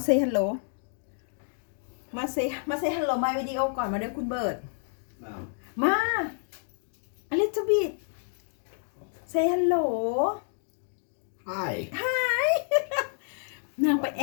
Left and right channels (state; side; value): silent; right; 59 dB below the other